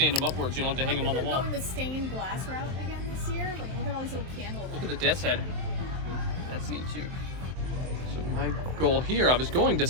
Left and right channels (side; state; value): left; late; 23 ms